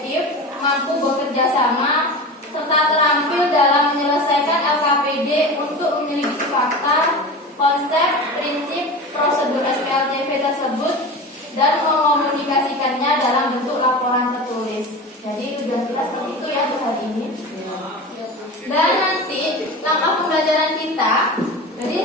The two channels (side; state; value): both; normal; correlation 0.30